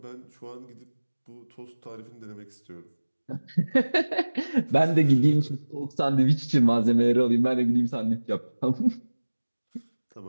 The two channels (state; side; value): inverted; both; correlation -1.00